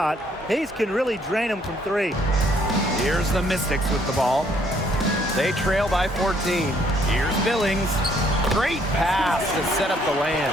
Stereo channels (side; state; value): both; normal; correlation 0.66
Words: Hayes can really drain him from three. Here's the Mystics with the ball. They trail by 14. Here's Billings. Great pass to set up the land.